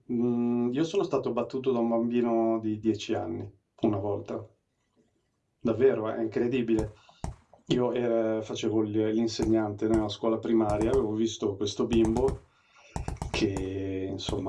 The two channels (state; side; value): identical; both; correlation 1.00